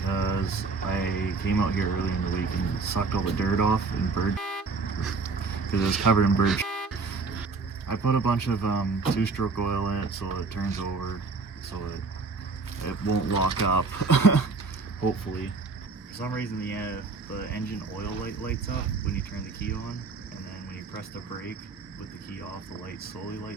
I came out here early in the week and sucked all the dirt off and bird because it was covered in bird. I put a bunch of two-stroke oil in it so it turns over so it won't lock up, hopefully. For some reason the engine oil light lights up when you turn the key on, and then when you press the brake with the key off, the light slowly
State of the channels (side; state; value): left; quieter; 4.1 dB